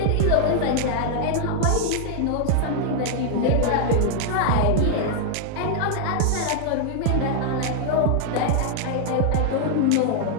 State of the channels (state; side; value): different; both; correlation 0.00